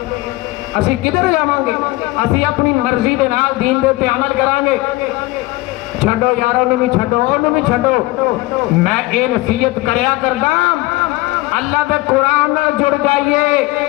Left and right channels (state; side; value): quieter; right; 19.8 dB